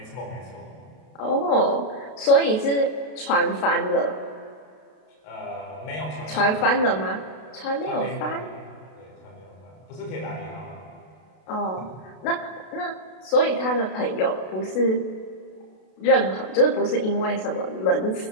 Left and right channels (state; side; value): late; right; 32 ms